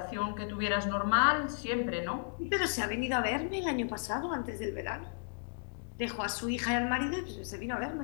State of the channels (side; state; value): right; silent; digital silence